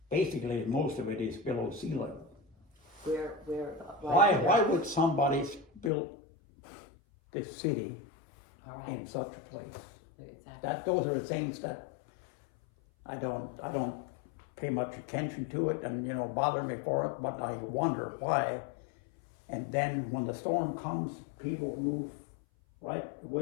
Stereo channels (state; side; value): drops out; right; at 5.9 s